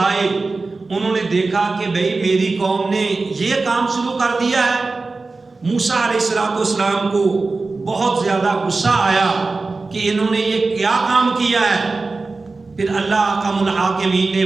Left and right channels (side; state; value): left; quieter; 3.7 dB